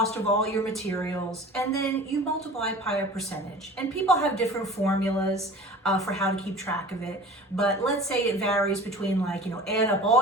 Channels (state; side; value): normal; both; correlation 0.40